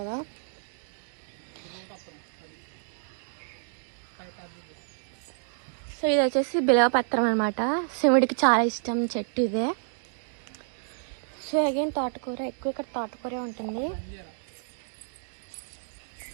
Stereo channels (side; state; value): left; silent; digital silence